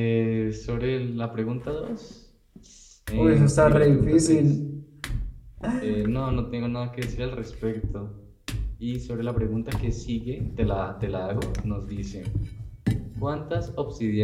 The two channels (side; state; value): both; identical; correlation 1.00